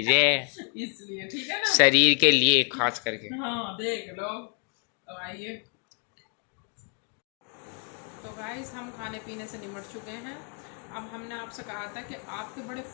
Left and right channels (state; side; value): quieter; right; 38.7 dB